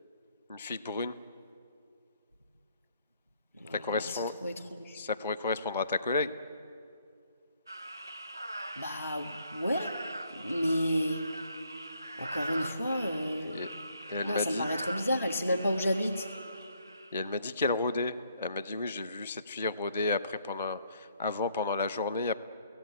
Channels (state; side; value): inverted; both; correlation -0.69